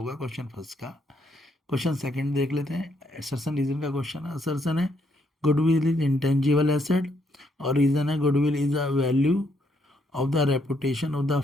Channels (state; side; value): normal; both; correlation 0.73